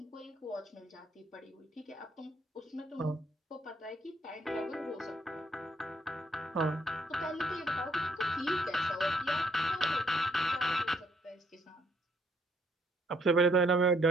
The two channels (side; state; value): both; normal; correlation 0.68